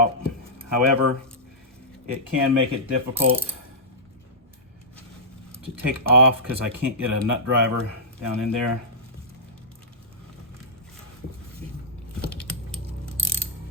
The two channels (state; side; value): normal; both; correlation -0.13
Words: However, it can make it difficult to take off because I can't get a nut driver down in there.